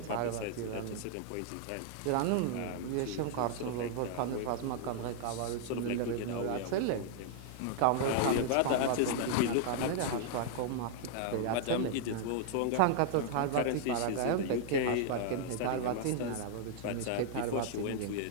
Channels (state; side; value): different; both; correlation -0.01